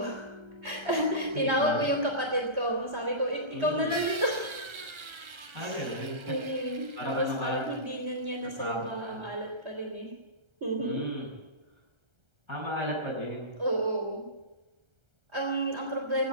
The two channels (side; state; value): left; late; 1.3 ms